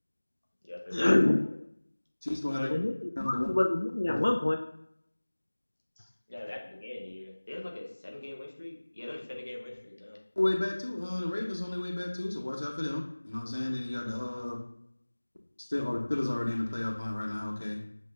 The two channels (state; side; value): inverted; both; correlation -1.00